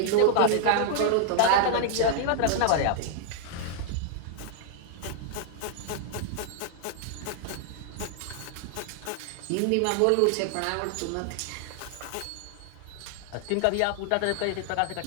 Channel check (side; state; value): both; different; correlation 0.00